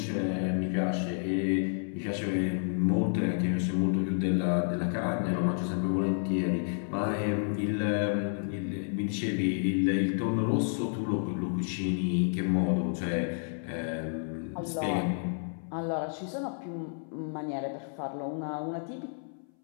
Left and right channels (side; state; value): right; silent; 57 dB below the other